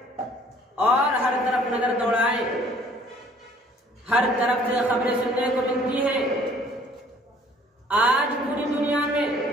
اور ہر طرف نظر دوڑائیں۔ ہر طرف سے خبریں سننے کو ملتی ہیں۔ آج پوری دنیا میں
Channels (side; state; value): both; normal; correlation 0.57